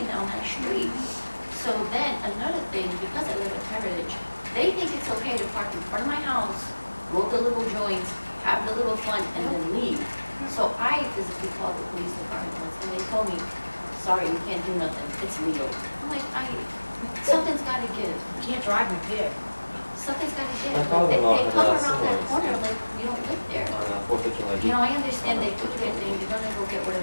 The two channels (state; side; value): inverted; both; correlation -1.00